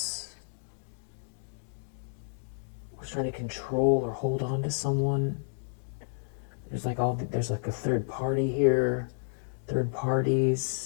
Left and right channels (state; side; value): silent; right; digital silence